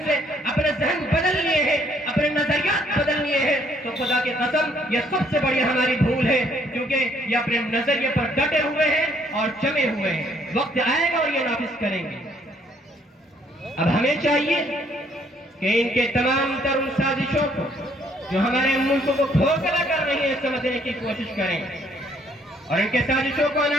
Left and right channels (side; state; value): both; normal; correlation 0.65